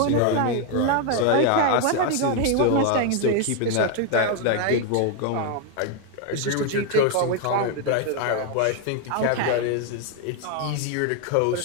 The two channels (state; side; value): different; both; correlation 0.01